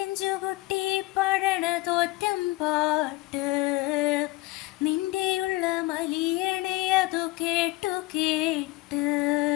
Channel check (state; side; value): quieter; right; 20.2 dB